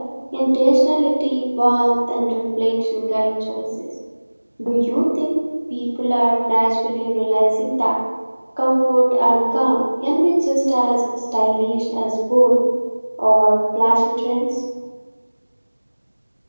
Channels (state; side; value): inverted; both; correlation -1.00